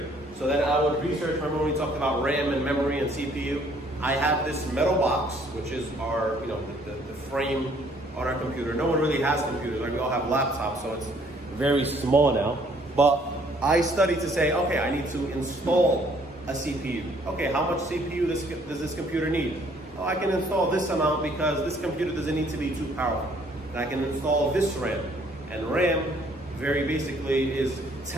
So then I would research, remember when we talked about RAM and memory and CPU? I have this metal box, which is our, the frame on our computer. No one really has computers, like we all have laptops, so it's very small now. But I studied to say, okay, I need to install a CPU. Okay, how much CPU does this computer need? Oh, I can install this amount because this computer doesn't need to be too powerful. And I can install this RAM. And RAM, very basically, is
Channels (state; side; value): normal; both; correlation 0.62